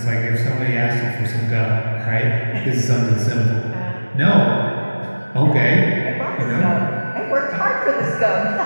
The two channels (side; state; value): both; inverted; correlation -1.00